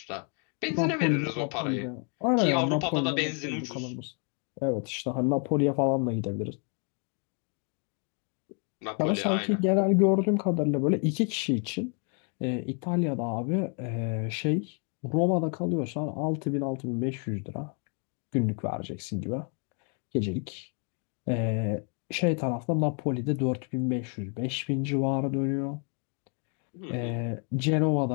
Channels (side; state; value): right; quieter; 39.3 dB